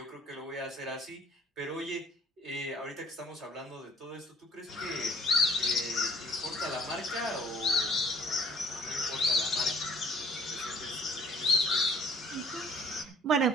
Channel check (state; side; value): normal; both; correlation 0.55